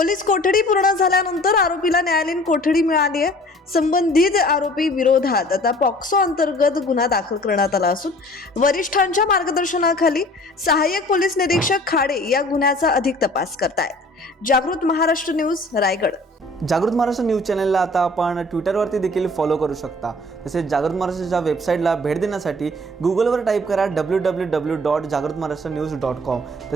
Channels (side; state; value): both; normal; correlation 0.50